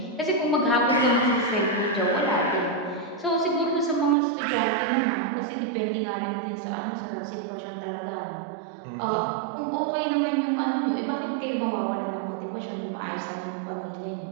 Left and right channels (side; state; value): left; drops out; at 4.2 s